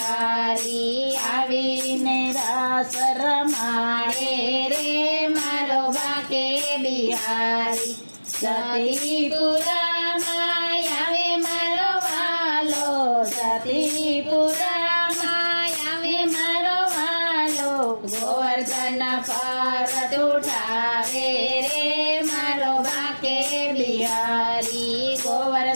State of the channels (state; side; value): inverted; both; correlation -1.00